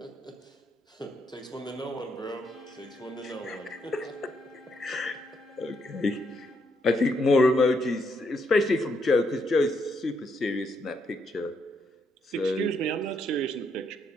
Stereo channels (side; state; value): both; normal; correlation 0.76